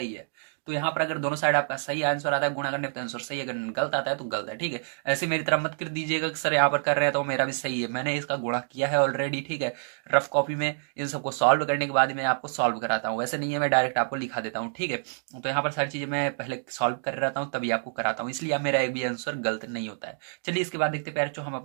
है। तो यहाँ पर अगर दोनों साइड आपका सही आंसर आता है गुणा करने पे तो आंसर सही है, अगर गलत आता है तो गलत है, ठीक है। ऐसे मेरी तरह मत कर दीजिएगा कि सर यहाँ पर कर रहे हैं तो मेरा भी सही है, मैंने इसका गुणा किया है ऑलरेडी, ठीक है। रफ कॉपी में इन सबको सॉल्व करने के बाद मैं आपको सॉल्व कराता हूँ, ऐसे नहीं है मैं डायरेक्ट आपको लिखा देता हूँ, ठीक है। तो यहाँ पर सारी चीज़ें मैं पहले सॉल्व कर रहता हूँ तभी आपको कराता हूँ, इसलिए मेरा एक भी आंसर गलत नहीं होता है। चलिए इसके बाद देखते पैर हम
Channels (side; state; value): left; silent; digital silence